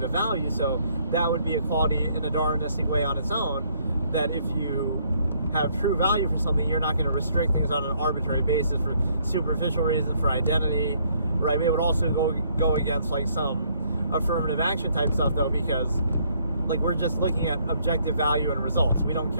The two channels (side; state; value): both; inverted; correlation -0.67